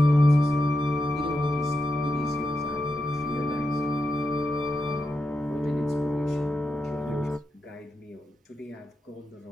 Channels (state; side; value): normal; both; correlation 0.87